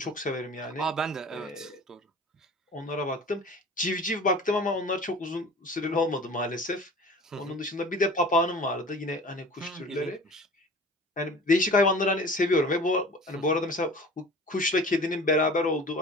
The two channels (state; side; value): normal; both; correlation 0.42